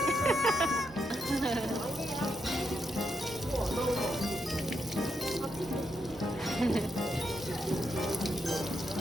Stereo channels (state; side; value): normal; both; correlation 0.82